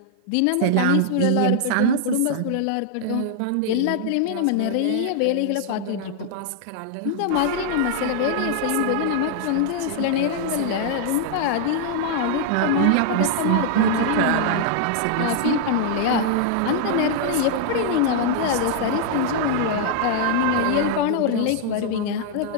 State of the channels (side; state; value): both; different; correlation -0.01